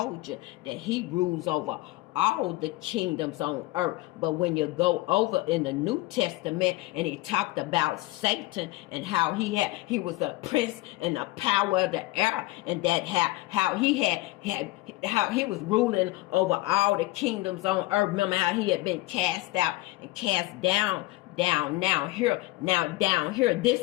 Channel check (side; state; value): right; quieter; 19.6 dB